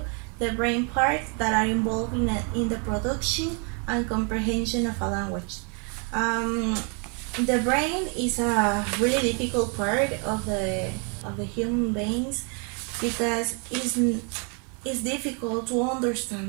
the brain parts that are involved in the production and comprehension of a language. Um, the brain is a really difficult part of the human beings because it's difficult to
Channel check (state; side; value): quieter; left; 37.2 dB